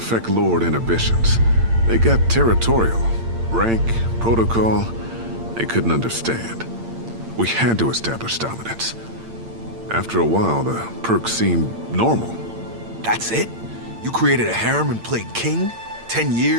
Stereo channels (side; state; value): left; late; 8.8 ms